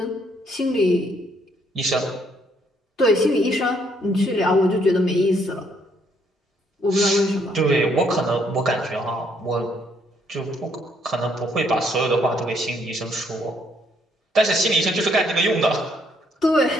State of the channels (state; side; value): normal; both; correlation 0.69